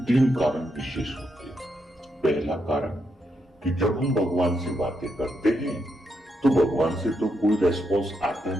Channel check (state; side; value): normal; both; correlation 0.81